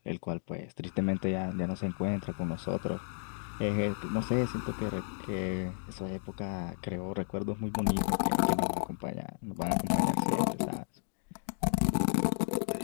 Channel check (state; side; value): silent; right; digital silence